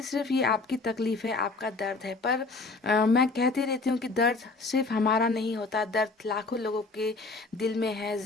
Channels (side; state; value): right; quieter; 3.6 dB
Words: सिर्फ ये आपकी तकलीफ है, आपका दर्द है, पर मैं कहती रहती हूँ कि दर्द सिर्फ हमारा नहीं होता, दर्द लाखों लोगों के दिल में है,